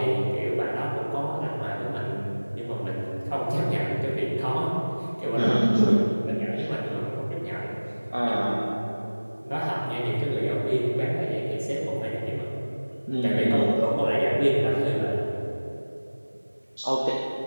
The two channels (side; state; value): both; inverted; correlation -1.00